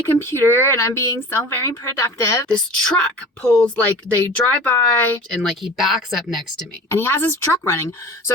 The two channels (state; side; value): normal; both; correlation 0.38